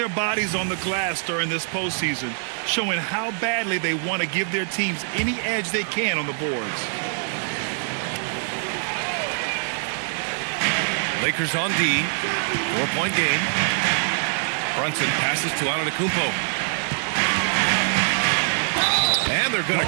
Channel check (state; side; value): silent; left; 63 dB below the other